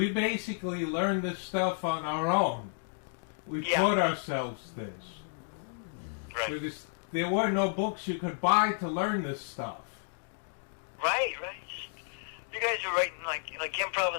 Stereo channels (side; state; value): right; silent; digital silence